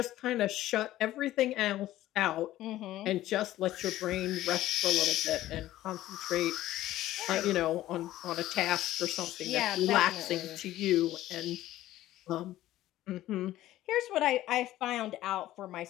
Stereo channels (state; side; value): quieter; right; 14.7 dB